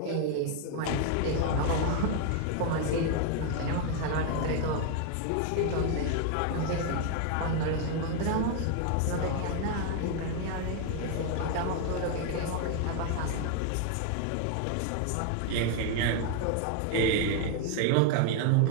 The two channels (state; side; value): different; both; correlation 0.01